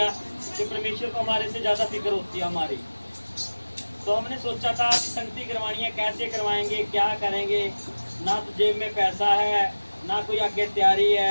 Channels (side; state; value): both; inverted; correlation -1.00